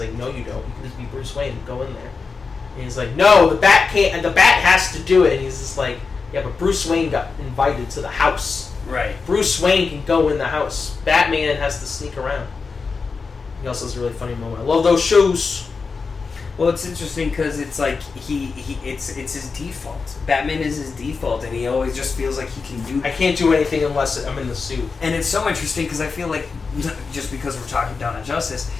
no you don't, you can just be Bruce Wayne, go in there. And he's like, no, the Bat can't, and the Bat has to do it, and he's just like, yeah, but Bruce Wayne got invited to the house. Right. Bruce Wayne can go in the house. Batman has to sneak around. He also has a really funny moment. I love those shoes. Well, it's interesting because it's like it's his default. Batman is his default, and he always just feels like he can do. I can't do anything unless I'm in the suit. And it's so interesting because I feel like, just because we're talking Dawn of Justice,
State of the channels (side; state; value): right; quieter; 4.8 dB